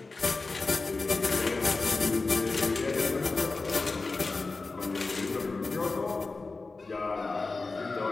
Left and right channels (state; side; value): quieter; right; 3.7 dB